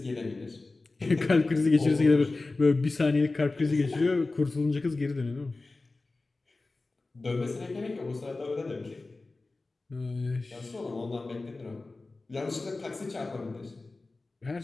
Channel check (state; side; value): quieter; right; 3.4 dB